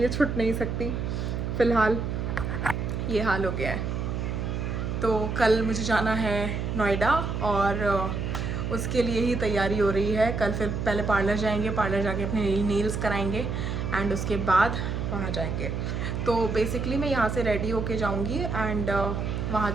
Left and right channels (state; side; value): noise; right; hum, 2 dB below the sound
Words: छूट नहीं सकती, फ़िलहाल ये हाल हो गया है। तो कल मुझे जाना है नोएडा, और उसके लिए ही तैयारी हो रही है। कल फिर पहले पार्लर जाएंगे, पार्लर जाके अपने नेल्स कराएंगे, एंड उसके बाद वहाँ जाएंगे। तो बेसिकली मैं यहाँ से रेडी होके जाऊँगी, एंड वहाँ